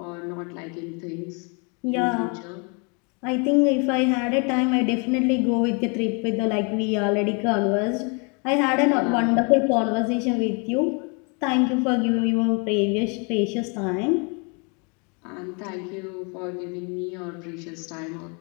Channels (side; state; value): right; quieter; 34.4 dB